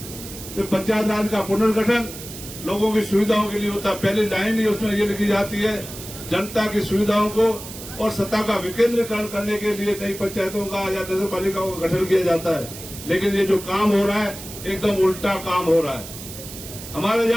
तो पंचायत राज का पुनर्गठन लोगों की सुविधाओं के लिए होता है। पहली लाइन ही उसमें ये लिखी जाती है, जनता की सुविधाओं को और सत्ता का विकेंद्रीकरण करने के लिए नई पंचायतों का या नगर पालिकाओं का गठन किया जाता है। लेकिन ये जो काम हो रहा है एकदम उल्टा काम हो रहा है। हमारे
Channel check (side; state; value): right; noise; hiss, 12 dB below the sound